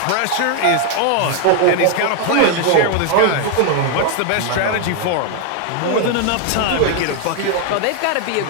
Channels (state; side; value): different; both; correlation 0.00